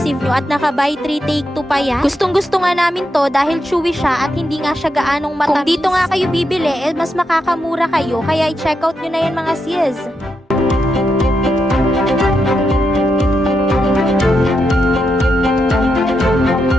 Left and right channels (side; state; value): both; normal; correlation 0.84